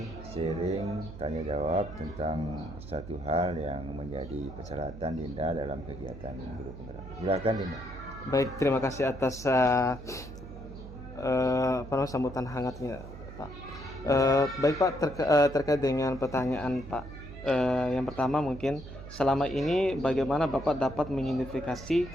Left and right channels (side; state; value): right; noise; hum, 13 dB below the sound